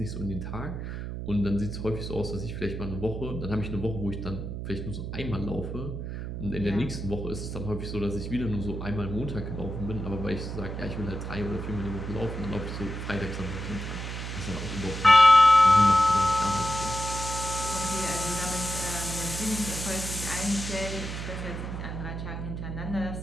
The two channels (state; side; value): noise; right; hum, 6 dB below the sound